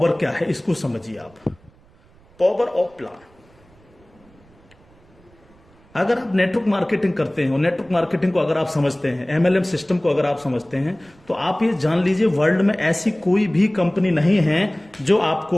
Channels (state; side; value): noise; right; rumble, 29 dB below the sound